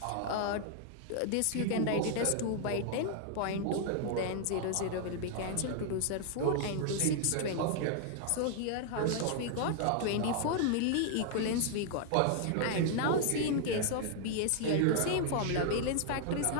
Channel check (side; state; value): both; different; correlation 0.00